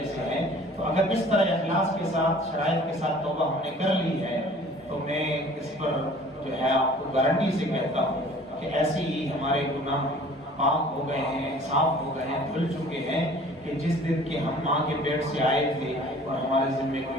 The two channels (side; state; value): both; normal; correlation 0.49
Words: سے ہے. تو اگر اس طرح اخلاص کے ساتھ شرائط کے ساتھ توبہ ہم نے کر لی ہے تو میں اس پر جو ہے آپ کو گارنٹی سے کہتا ہوں کہ ایسے ہی ہمارے گناہ پاک ہو گئے ہیں، صاف ہو گئے ہیں، دھل چکے ہیں کہ جس دن کے ہم ماں کے پیٹ سے آئے تھے اور ہمارے ذمہ